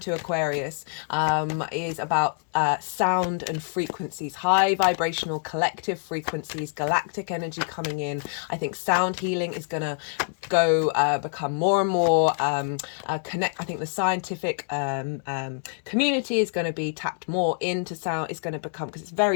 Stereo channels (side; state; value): right; silent; 61 dB below the other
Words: Aquarius is about sound and frequencies, high vibrational collective frequencies, galactic energy coming in. I think sound healing is going to become more and more connect. I think the scientific community is going to be tapped more into sound. It's going to become, because it's